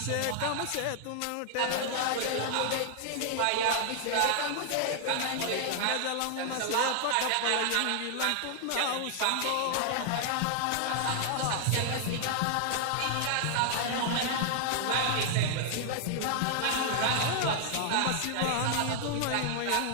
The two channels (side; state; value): both; different; correlation 0.00